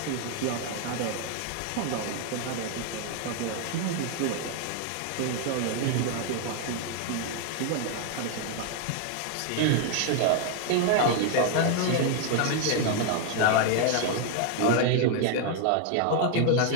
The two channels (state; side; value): different; both; correlation 0.00